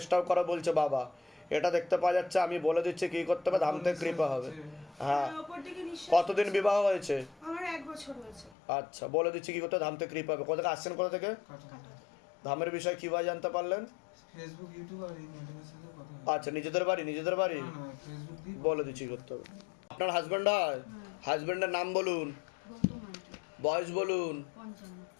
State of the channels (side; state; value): right; drops out; at 8.6 s